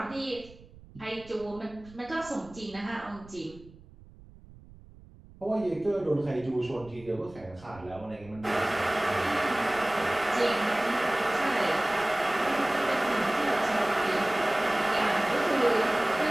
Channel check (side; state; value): right; noise; rumble, 21 dB below the sound